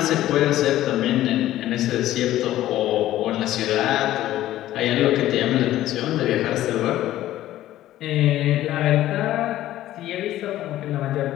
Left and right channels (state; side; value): quieter; right; 14.1 dB